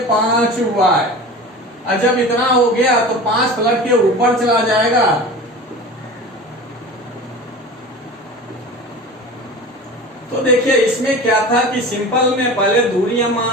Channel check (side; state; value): both; normal; correlation 0.35